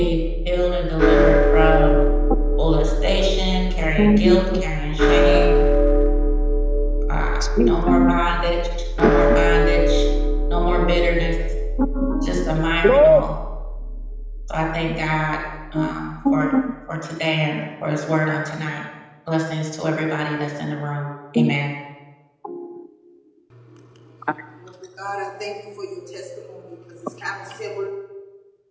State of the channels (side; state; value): both; identical; correlation 1.00